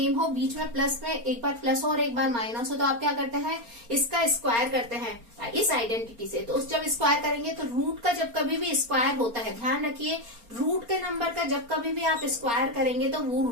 हो, बीच में प्लस में एक बार प्लस हो और एक बार माइनस हो, तो आप क्या करते हैं? इसका स्क्वायर करते हैं इस आइडेंटिटी से। तो उस जब स्क्वायर करेंगे तो रूट का जब कभी भी स्क्वायर होता है, ध्यान रखिए, रूट के नंबर का जब कभी भी आप स्क्वायर करेंगे तो वो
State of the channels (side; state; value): left; late; 4.3 ms